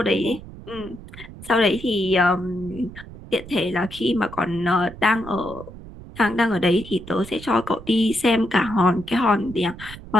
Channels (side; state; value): right; noise; rumble, 15 dB below the sound